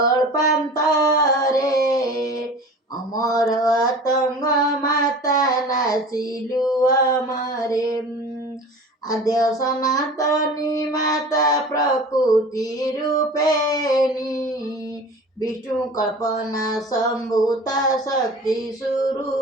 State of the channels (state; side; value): normal; both; correlation 0.40